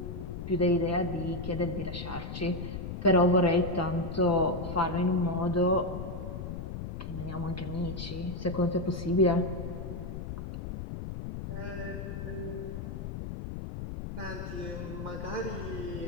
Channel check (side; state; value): left; noise; rumble, 7 dB below the sound